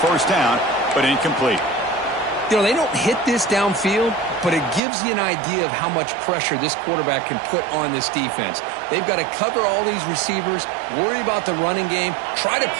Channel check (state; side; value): drops out; left; at 4.8 s